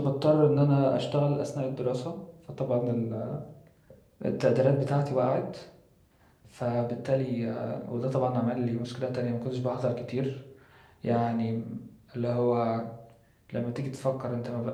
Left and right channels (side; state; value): both; identical; correlation 1.00